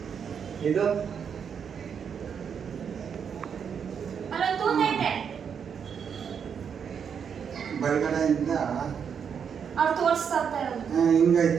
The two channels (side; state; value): left; quieter; 7.2 dB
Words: ಇದು ಅಲ್ಲೊಂದು ತೂತ ಐತೆ. ಬಲಗಡೆಯಿಂದ ಅವ್ರು ತೋರಿಸ್ತಾ ಇರೋದು.